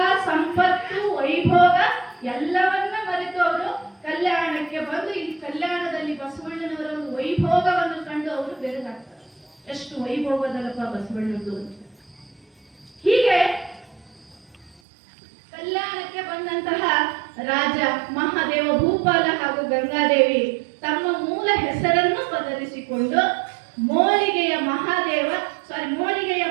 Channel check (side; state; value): left; drops out; at 14.8 s